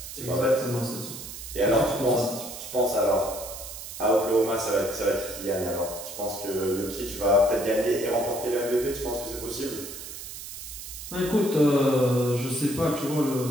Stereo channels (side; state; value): right; noise; hiss, 10 dB below the sound